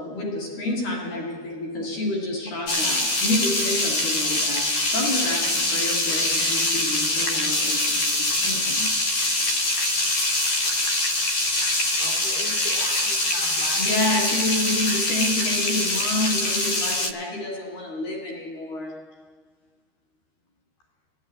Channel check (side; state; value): right; late; 13 ms